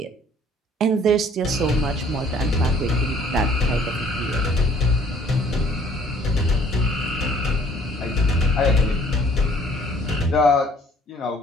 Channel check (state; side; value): normal; both; correlation 0.58